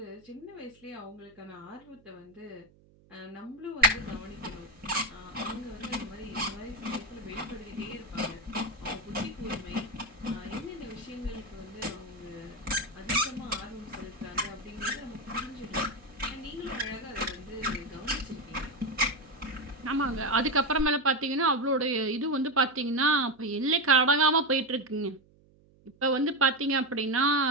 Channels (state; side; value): noise; right; hum, 29 dB below the sound